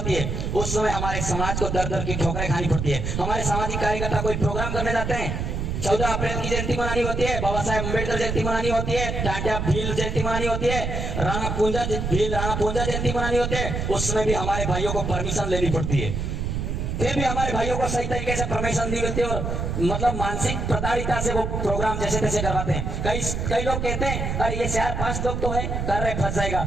है, उस समय हमारे समाज को दर दर की ठोकरें खानी पड़ती है। हमारे सामाजिक कार्यकर्ता कोई प्रोग्राम करने जाते हैं, 14 अप्रैल की जयंती मनानी होती है, बाबा साहेब अम्बेडकर जयंती मनानी होती है, टाटा भील जयंती मनानी होती है, राणा पूंजा जयंती मनानी होती है, उस समय भी हमारे भाइयों को परमिशन लेनी पड़ती है। फिर भी हमारे भाइयों को सही तरीके से परमिशन दी होती है, और मतलब मानसिक प्रताड़िता से वो प्रोग्राम जैसे तैसे करवाते हैं। कई लोग कहते हैं अरे ये 4-5 लोग तो है कर रहे, फंस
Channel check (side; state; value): right; noise; rumble, 2 dB below the sound